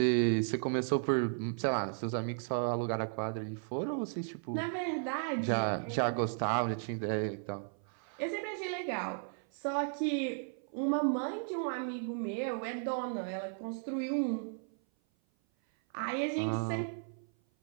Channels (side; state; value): left; silent; 54 dB below the other